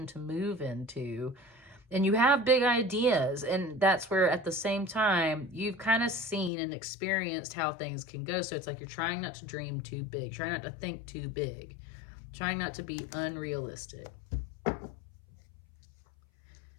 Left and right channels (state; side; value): drops out; right; at 6.5 s